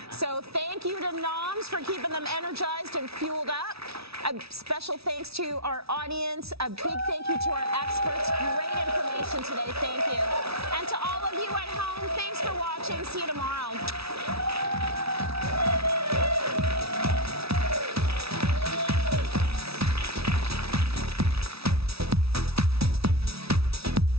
So thank you to Nom's for keeping them energized and fueled up. A special thanks to our audience. A big thank you to our experts. Great information today. Thank you. And to all of you at home, thanks for watching. See you tomorrow.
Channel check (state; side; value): late; left; 0.77 ms